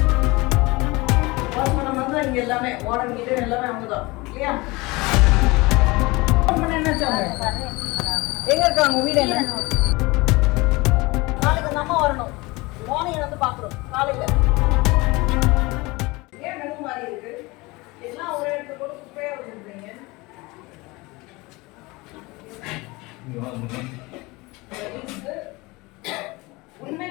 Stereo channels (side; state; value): right; quieter; 23.4 dB